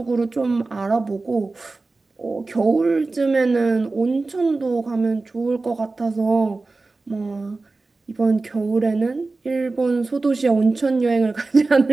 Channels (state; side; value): quieter; left; 3.5 dB